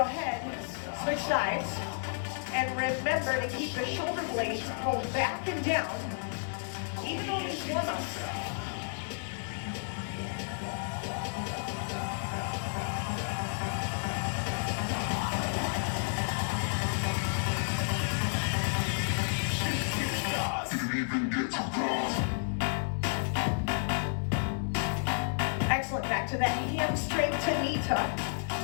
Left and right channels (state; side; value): silent; right; digital silence